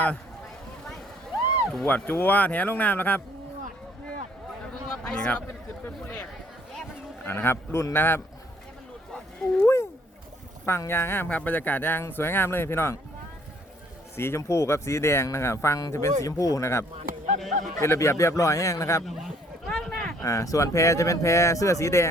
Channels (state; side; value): normal; both; correlation 0.62